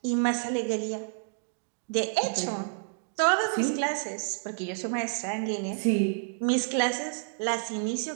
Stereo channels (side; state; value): left; silent; digital silence